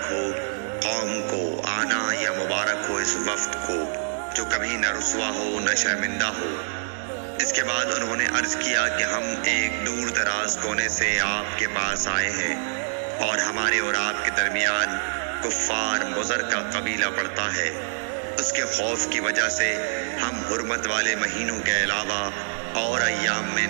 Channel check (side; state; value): left; silent; 61 dB below the other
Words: ہو قوم کو آنا یا مبارک ہو اس وفد کو جو کبھی نہ رسوا ہو نہ شرمندہ ہو۔ اس کے بعد انہوں نے عرض کیا کہ ہم ایک دور دراز کونے سے آپ کے پاس آئے ہیں اور ہمارے اور آپ کے درمیان کفار مضر کا قبیلہ پڑتا ہے۔ اس کے خوف کی وجہ سے ہم حرمت والے مہینوں کے علاوہ اور ایام میں